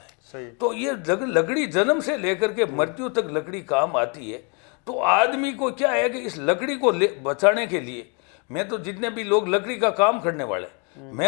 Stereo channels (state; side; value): quieter; right; 34.9 dB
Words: है। सही। तो ये लकड़ी जन्म से लेकर के मृत्यु तक लकड़ी काम आती है। तो आदमी को क्या है कि इस लकड़ी को बचाने के लिए, मैं तो जितने भी लोग लकड़ी का काम करने वाले,